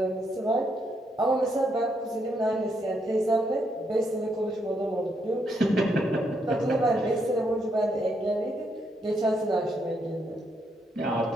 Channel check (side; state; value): both; normal; correlation 0.77